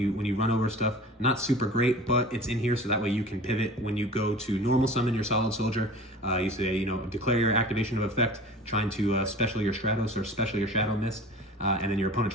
run over stuff. Not super great, but it's in here so that way you can pivot when you go to normal summon your Solid Soldier. You say, declare your activation of effect, trying to special your Stratos or special your Shadow Mist. and then your opponent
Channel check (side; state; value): both; normal; correlation 0.40